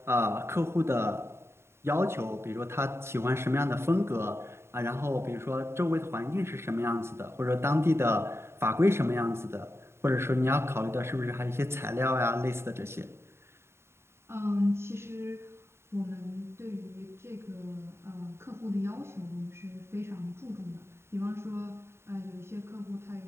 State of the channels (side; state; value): left; late; 0.12 ms